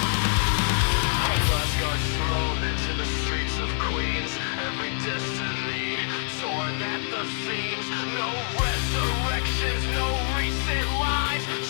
Asgard's thrown into the streets of Queens. Every destiny torn at the seams. No resurrections, no reset lines.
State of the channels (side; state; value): right; silent; digital silence